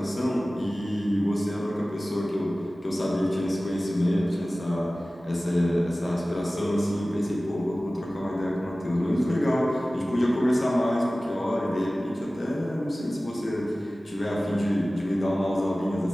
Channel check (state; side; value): normal; both; correlation 0.97